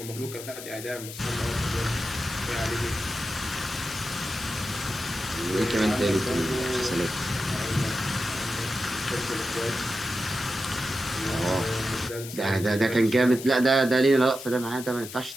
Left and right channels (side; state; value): left; noise; hiss, 12 dB below the sound